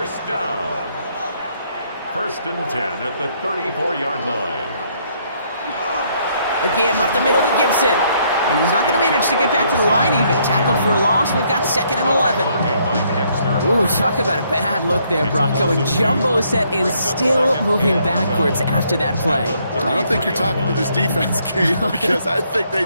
down. 1st and 10 at the 34-yard line. Again, up the middle to Gibson. And he's not going to manage to get back to the line even. Tackled for a loss. We've got 2nd and 11. Ooh, talk about a bad look there, Brock. Going jumbo set and still moving backwards after that play. I don't think you're talking to this defense, Kate, because I think they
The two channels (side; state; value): both; inverted; correlation -0.69